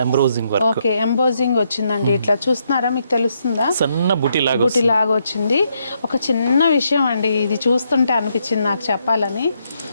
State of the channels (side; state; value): both; inverted; correlation -0.77